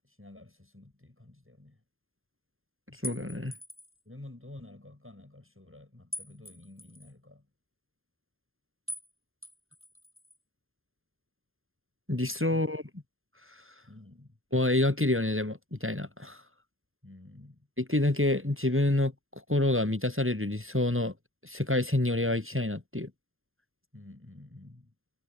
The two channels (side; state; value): left; late; 0.60 ms